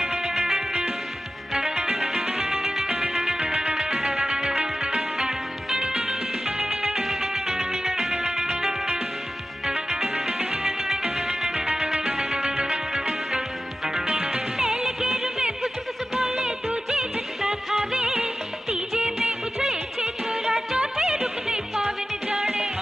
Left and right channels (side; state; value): both; normal; correlation 0.94